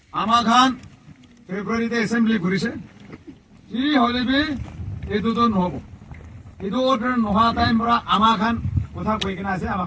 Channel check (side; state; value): both; identical; correlation 1.00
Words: ama khan February te assembly korise ji hole be etu to nohobo itu order noha time pura amakan kotha koi kena ase